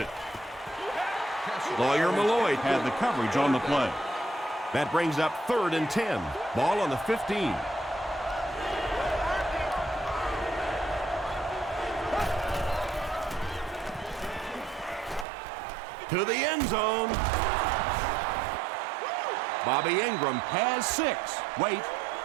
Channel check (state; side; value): drops out; left; at 15.2 s